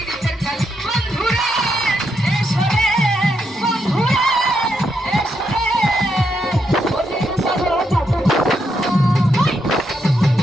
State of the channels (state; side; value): normal; both; correlation 0.80